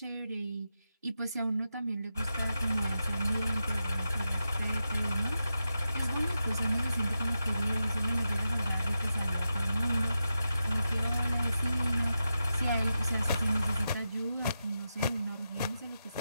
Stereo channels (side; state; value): both; inverted; correlation -0.89